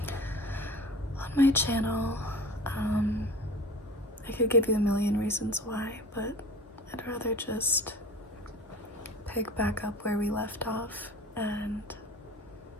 on my channel. I could give you a million reasons why, but I'd rather just pick back up where we left off and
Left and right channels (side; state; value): both; normal; correlation 0.39